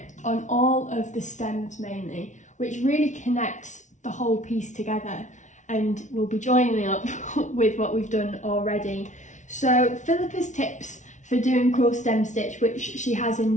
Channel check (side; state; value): right; late; 0.36 ms